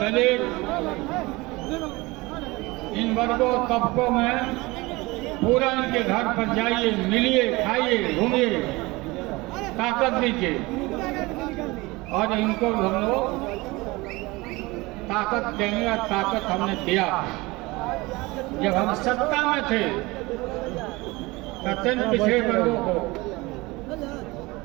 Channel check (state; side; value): quieter; left; 22.4 dB